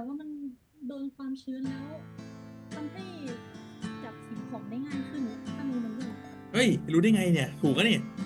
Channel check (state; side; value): identical; both; correlation 1.00